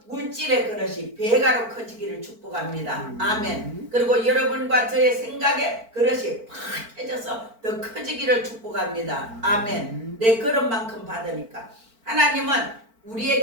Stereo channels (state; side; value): late; left; 4.5 ms